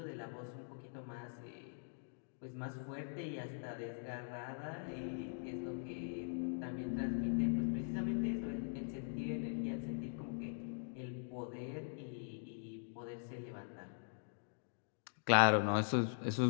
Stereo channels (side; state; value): right; silent; digital silence